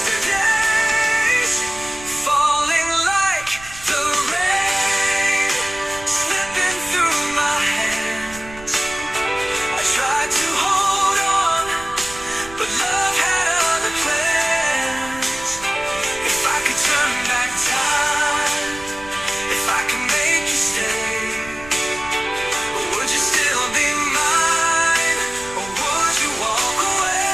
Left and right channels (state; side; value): noise; right; rumble, 18 dB below the sound